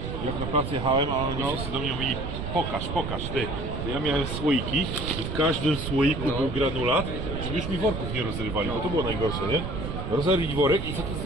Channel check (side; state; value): right; noise; rumble, 5 dB below the sound